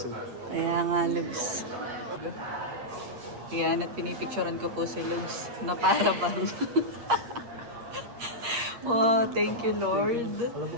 Kaya nga, Lugs. Yan, at pinipicturean ko po si Lugs na para bang. Wow, thank you Lord. Alam mo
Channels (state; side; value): late; left; 8.5 ms